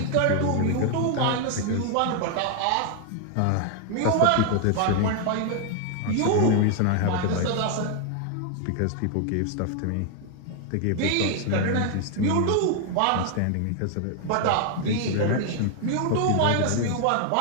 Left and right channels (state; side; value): different; both; correlation 0.00